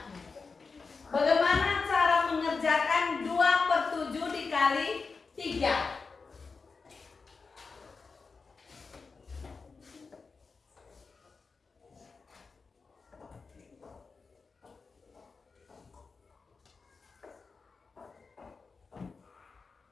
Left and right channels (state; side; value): quieter; right; 4.6 dB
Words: Bagaimana cara mengerjakan 2 per 7 dikali 3?